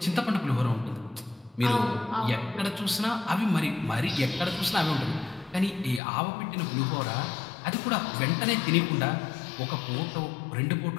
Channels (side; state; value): right; drops out; at 6.0 s